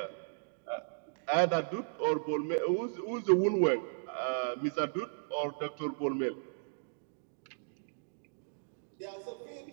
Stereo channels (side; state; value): left; silent; digital silence